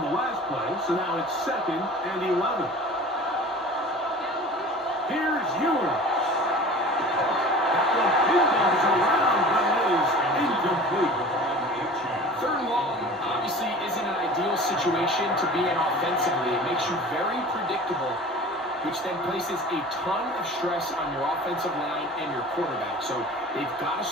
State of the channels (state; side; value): normal; both; correlation 0.41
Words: the last play, so now it's 2nd and 11. Here's Ewing. That one pinballs around, but it is incomplete. 3rd and long obviously isn't an ideal situation to be in offensively. It makes you very predictable, which then places a ton of stress on your offensive line and your quarterback. So they've got to